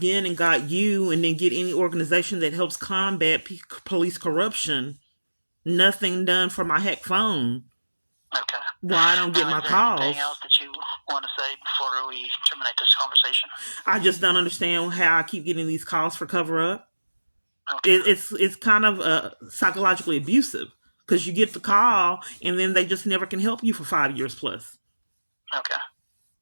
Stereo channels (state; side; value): inverted; both; correlation -1.00